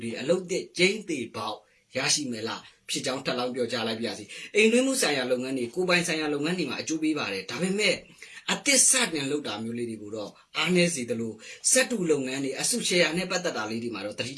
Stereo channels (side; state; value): both; identical; correlation 1.00